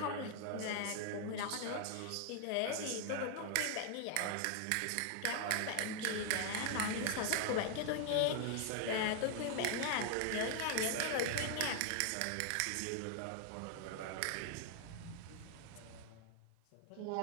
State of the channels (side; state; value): both; different; correlation 0.00